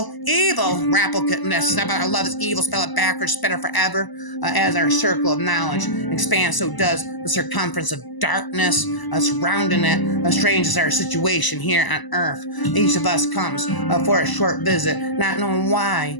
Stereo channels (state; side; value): late; right; 1.0 ms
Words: Rappelness, I love is evil, spell it backwards, better forever. As our circle of knowledge expands, so does the circumference of darkness surrounding it. Strange is our situation here on earth. Each of us comes for a short visit, not knowing why,